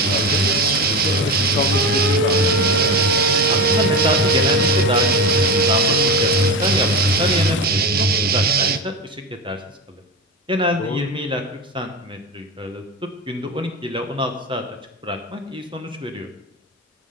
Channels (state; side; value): normal; both; correlation 0.21